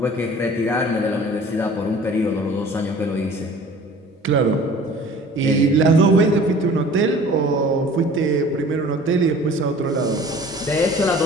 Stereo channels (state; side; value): normal; both; correlation 0.46